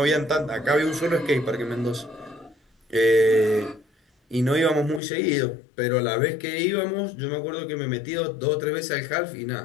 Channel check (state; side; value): drops out; right; at 5.0 s